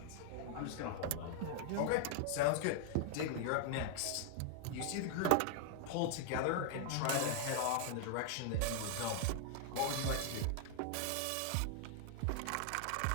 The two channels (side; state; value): both; different; correlation -0.01